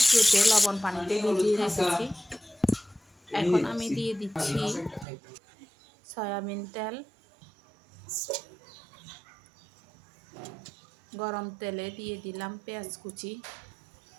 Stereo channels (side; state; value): left; drops out; at 5.1 s